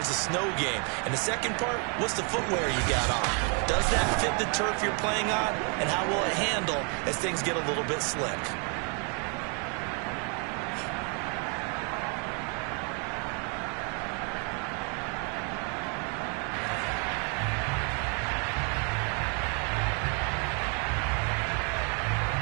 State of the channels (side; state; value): left; quieter; 37.3 dB